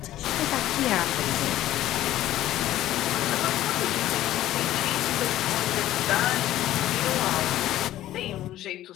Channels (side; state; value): right; quieter; 13.8 dB